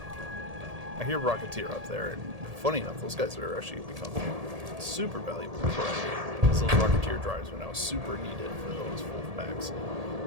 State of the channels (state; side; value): late; left; 1.8 ms